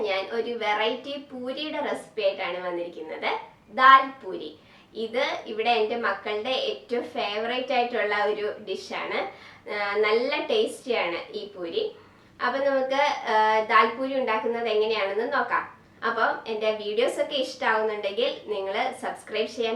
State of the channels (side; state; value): both; identical; correlation 1.00